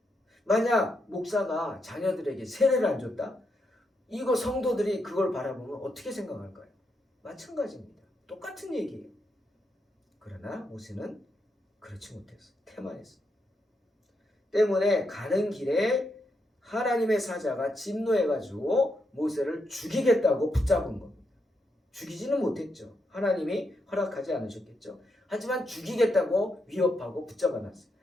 만약 목사가 자녀들에게 세례를 안 줬다? 이거 성도들이 그걸 바라보면 어떻게 생각할까요? 마찬가지입니다. 똑같은 얘기예요. 그러나 모세는 그렇지 못했어요. 태만했어요. 때문에 가는 길에 하나님의 사자가 진노해가지고 모세를 죽이겠다고 붙잡은 겁니다. 죽이지는 못했죠. 하나님이 허락하지 않으셨겠죠. 하지만 죽이겠다고 위협하고 붙잡아놨어요.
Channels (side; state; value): both; normal; correlation 0.82